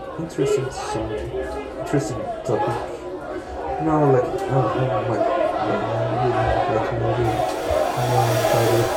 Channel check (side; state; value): both; identical; correlation 1.00